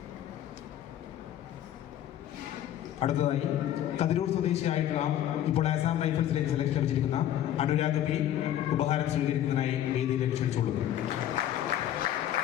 അടുത്തതായി കതിരൂർ സ്വദേശിയായിട്ടുള്ള ഇപ്പോൾ ആസാം റൈഫിൾസിലേക്ക് സെലക്ഷൻ ലഭിച്ചിരിക്കുന്ന അനുരാഗ് P ഉപഹാരം സ്വീകരിക്കുന്നതിനായി വേദിയിലേക്ക് ക്ഷണിച്ചുകൊള്ളുന്നു.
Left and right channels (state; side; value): quieter; right; 11.6 dB